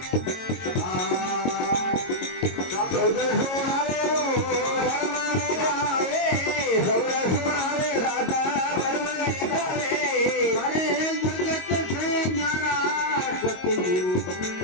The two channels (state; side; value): late; right; 22 ms